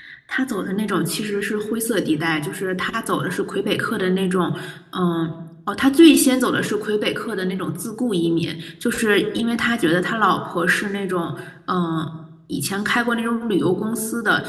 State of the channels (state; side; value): identical; both; correlation 1.00